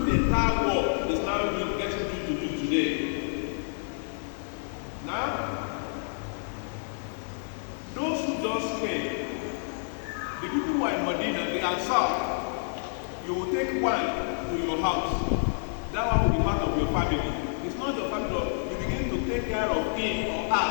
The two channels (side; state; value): right; silent; 59 dB below the other